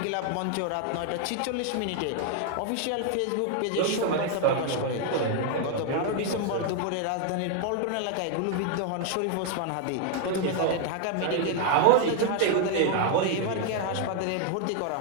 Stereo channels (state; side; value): different; both; correlation 0.00